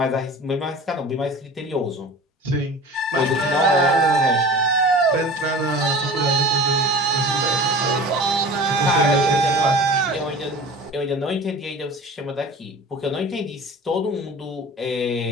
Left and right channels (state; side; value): normal; both; correlation 0.39